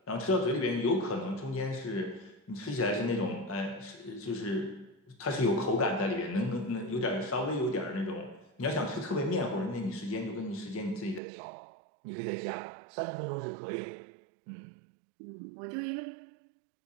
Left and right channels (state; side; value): drops out; left; at 11.2 s